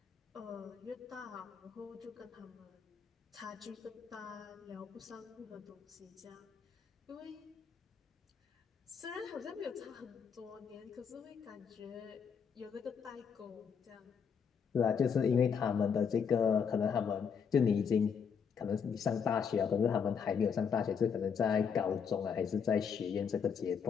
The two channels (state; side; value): quieter; right; 6.6 dB